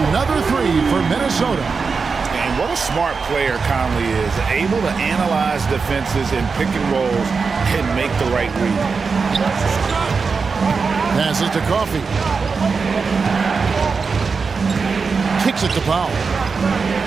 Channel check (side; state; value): left; quieter; 4.9 dB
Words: 3 for Minnesota. And what a smart player Conley is, able to analyze defenses in pick and rolls and make the right read. Passes to Coffey. Kicks it to Powell.